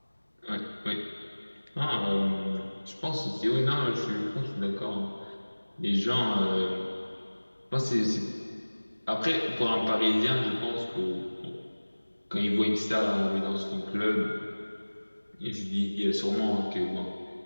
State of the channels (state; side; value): inverted; both; correlation -1.00